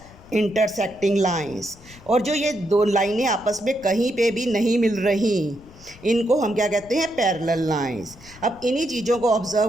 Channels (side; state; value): left; noise; rumble, 22 dB below the sound